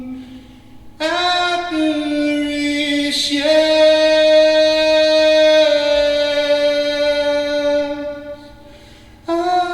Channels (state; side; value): identical; both; correlation 1.00